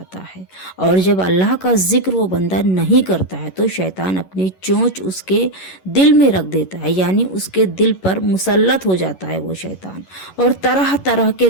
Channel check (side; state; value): right; late; 11 ms